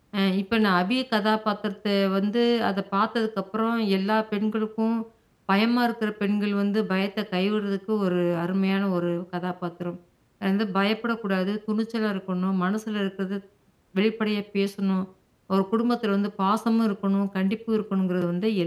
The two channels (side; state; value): both; identical; correlation 1.00